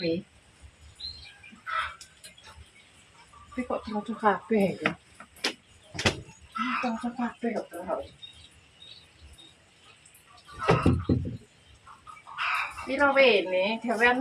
Tapi kok cocok kabeh ya. Cocok kabeh kok terus. Piro wene,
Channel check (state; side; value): identical; both; correlation 1.00